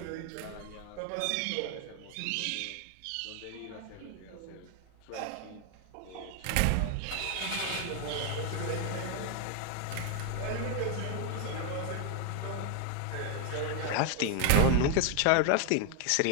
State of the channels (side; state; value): both; different; correlation 0.00